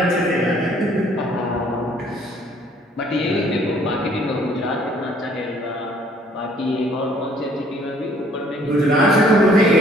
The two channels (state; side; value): normal; both; correlation 0.60